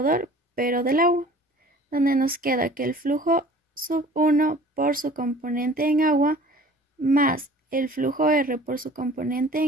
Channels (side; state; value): both; normal; correlation 0.47